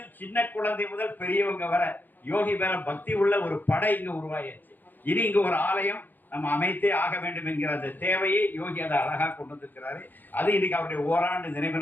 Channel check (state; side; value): late; right; 0.087 ms